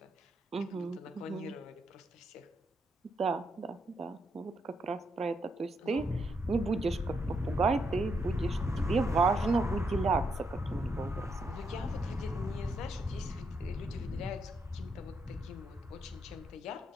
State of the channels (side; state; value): both; normal; correlation 0.78